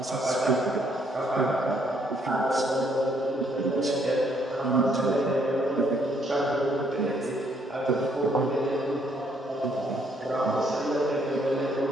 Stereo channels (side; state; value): both; normal; correlation 0.69